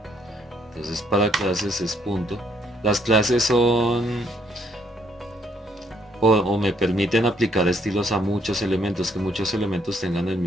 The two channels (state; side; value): normal; both; correlation 0.69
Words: Entonces para clases es punto. Las clases son o me permiten aplicar estilos a muchos elementos, que muchos elementos tengan el